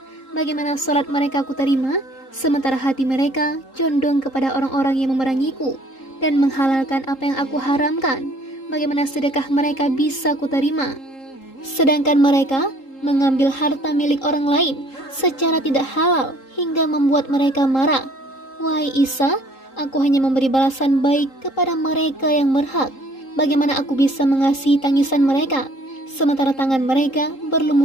Bagaimana salat mereka kuterima, sementara hati mereka condong kepada orang-orang yang memerangiku dan menghalalkan apa yang aku haramkan? Bagaimana sedekah mereka bisa kuterima, sedangkan mereka mengambil harta milik orang lain secara tidak halal hingga membuat mereka marah? Wahai Isa, aku hanya memberi balasan baik kepada mereka yang berhak. Bagaimana aku bisa mengasihi tangisan mereka, sementara tangan mereka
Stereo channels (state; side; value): late; right; 3.8 ms